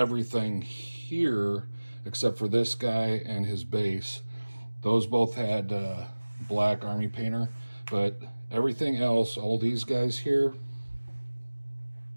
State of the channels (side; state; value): both; inverted; correlation -1.00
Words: here, except for this guy and his base, those both had black Army Painter. But everything else, all these guys here,